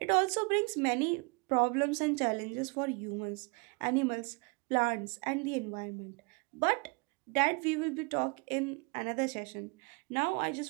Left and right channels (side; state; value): left; quieter; 31.1 dB